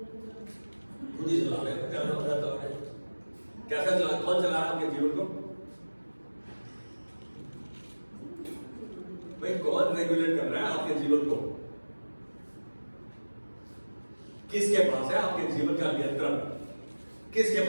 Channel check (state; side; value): inverted; both; correlation -1.00